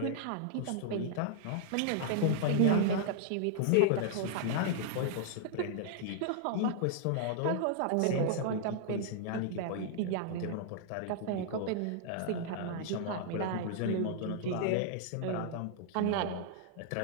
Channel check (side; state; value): both; different; correlation -0.01